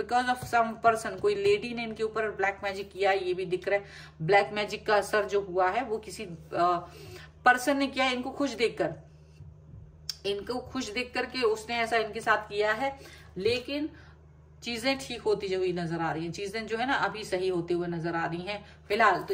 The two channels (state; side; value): identical; both; correlation 1.00